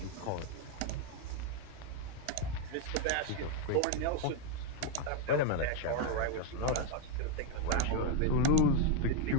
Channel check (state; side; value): different; both; correlation 0.02